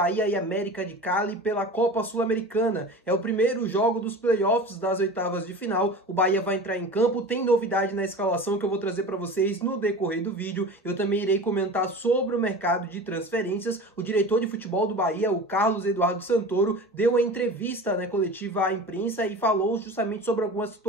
e América de Cali pela Copa Sul-Americana. É o primeiro jogo dos playoffs das oitavas de final. O Bahia vai entrar em campo, tem novidade na escalação que eu vou trazer para vocês no decorrer do vídeo. Eu também irei comentar sobre o mercado de transferências. O diretor de futebol do Bahia, o Carlos Eduardo Santoro, deu uma entrevista coletiva à imprensa e falou justamente sobre algumas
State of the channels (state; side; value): normal; both; correlation 0.35